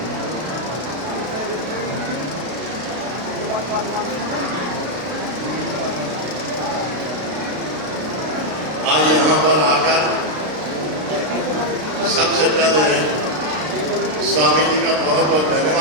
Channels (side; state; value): left; late; 33 ms